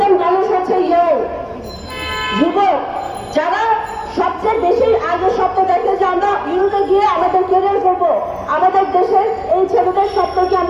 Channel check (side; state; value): both; identical; correlation 1.00